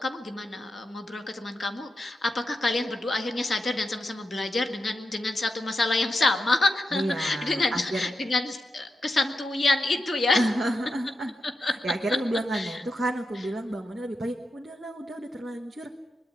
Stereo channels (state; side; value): normal; both; correlation 0.87